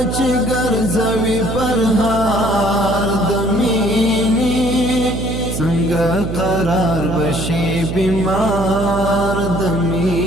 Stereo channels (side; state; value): right; noise; hum, 5 dB below the sound